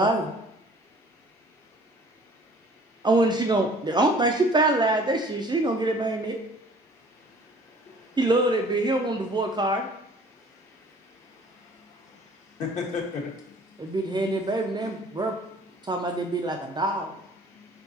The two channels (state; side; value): normal; both; correlation 0.52